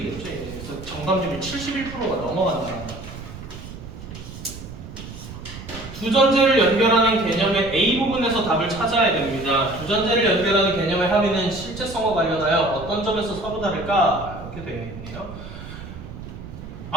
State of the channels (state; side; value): noise; right; rumble, 12 dB below the sound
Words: 그래서 정답률이 71%가 넘어간다. 두 전제를 연결하는 개념의 A 부분에서 답을 찾아야 됩니다. 두 전제를 연결하는 개념의 합의는 실제성과 관련하여 어떤 점에서 서로 다를까? 이렇게 되어 있네요.